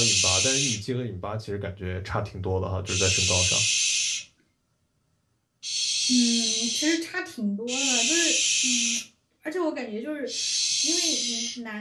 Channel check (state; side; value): identical; both; correlation 1.00